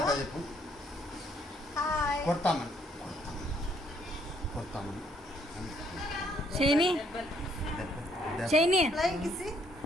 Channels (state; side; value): normal; both; correlation 0.68